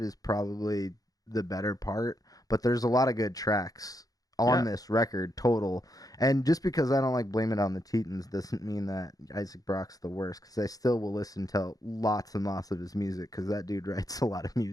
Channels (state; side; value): late; right; 0.18 ms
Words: probably the better part, but there's a lot of good tracks on this record total. And just because I don't like Blame It on the Tetons doesn't mean that Isaac Brock's the worst, because I still will listen to lots and lots of his music, because that dude writes a lot of